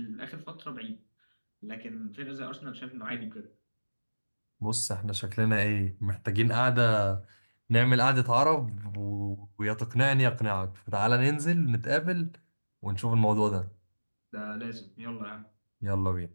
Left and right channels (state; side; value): inverted; both; correlation -1.00